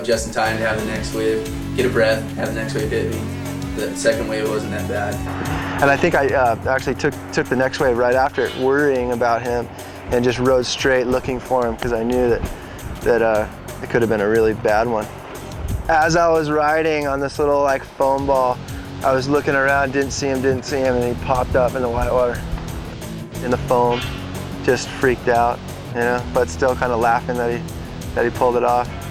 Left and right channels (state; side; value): identical; both; correlation 1.00